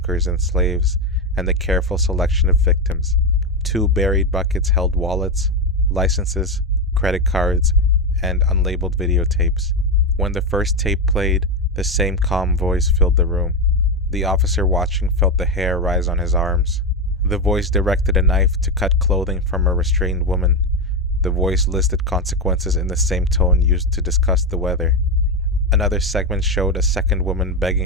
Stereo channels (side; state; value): both; normal; correlation 0.10